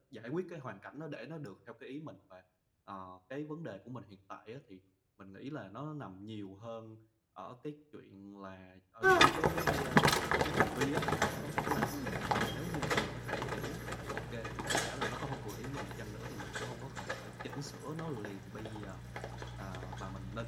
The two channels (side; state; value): both; identical; correlation 1.00